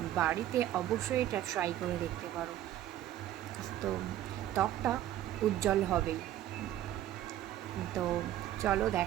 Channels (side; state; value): left; quieter; 12.7 dB